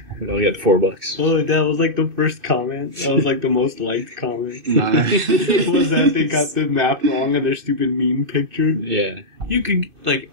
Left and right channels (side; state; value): left; late; 2.6 ms